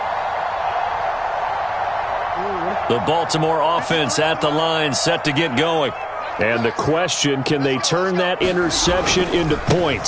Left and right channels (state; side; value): identical; both; correlation 1.00